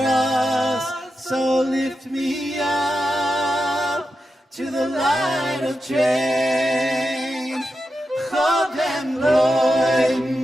so lift me up to the light of change. Hab dem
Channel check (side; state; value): both; normal; correlation 0.89